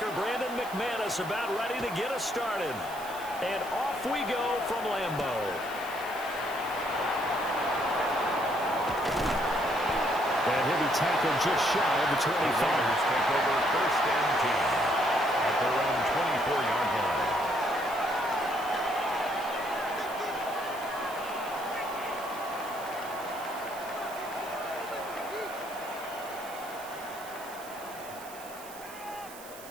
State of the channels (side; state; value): right; noise; hiss, 17 dB below the sound